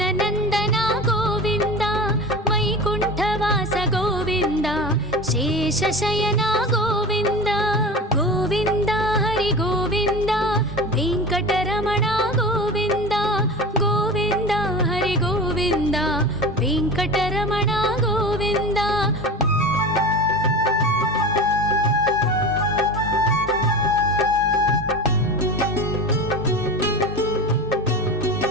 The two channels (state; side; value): normal; both; correlation 0.30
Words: गोविन्द वैकुण्ठवास गोविन्द शेषशयन गोविन्द गोविन्द हरि गोविन्द वेङ्कटरमण गोविन्द गोविन्द हरि गोविन्द वेङ्कटरमण गोविन्द